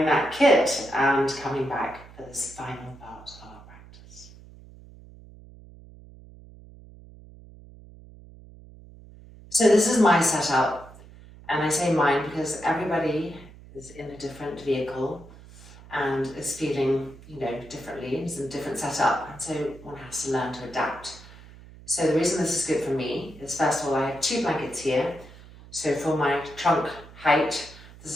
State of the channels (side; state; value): right; noise; hum, 20 dB below the sound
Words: that kit and coming back for this final part of our practice. So this is my setup, and I say mine because everybody is in a different vehicle and is feeling, differently. It's a different setup, and so one has to learn to adapt. So the reason this is good for me is, first of all, I have 2 blankets here. So for my trunk height, this